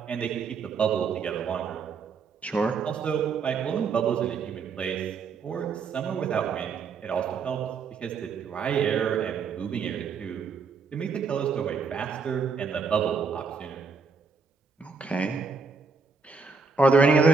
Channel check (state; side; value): quieter; left; 5.0 dB